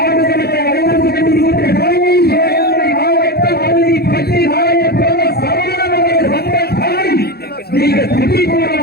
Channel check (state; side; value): late; right; 0.46 ms